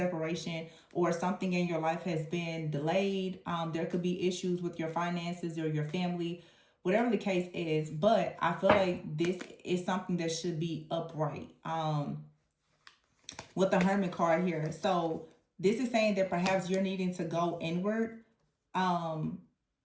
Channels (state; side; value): identical; both; correlation 1.00